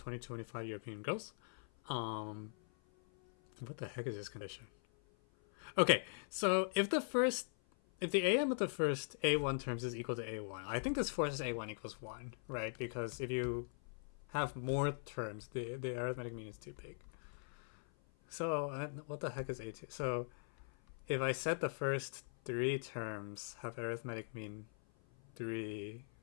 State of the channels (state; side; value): silent; right; 50 dB below the other